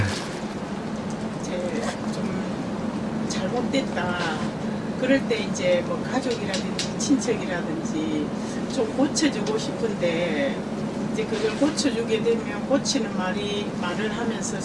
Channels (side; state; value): both; identical; correlation 1.00